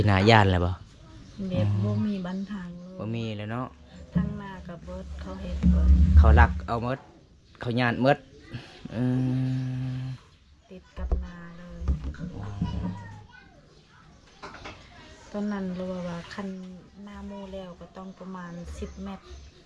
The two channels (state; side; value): identical; both; correlation 1.00